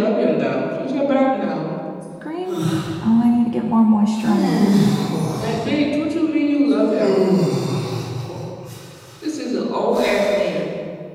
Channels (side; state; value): both; identical; correlation 1.00